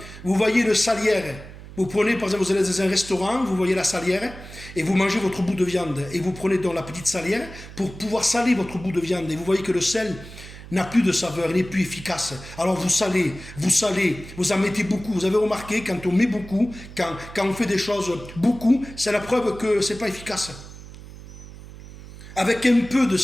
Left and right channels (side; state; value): right; noise; hum, 15 dB below the sound